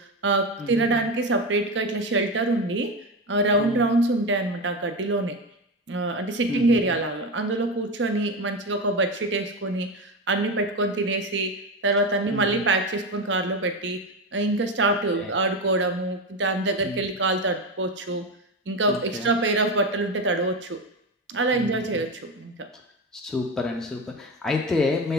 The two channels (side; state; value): both; normal; correlation 0.18